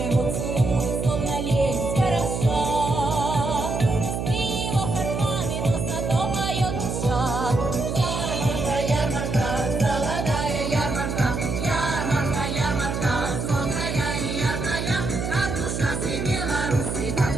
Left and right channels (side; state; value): right; noise; hum, 3 dB below the sound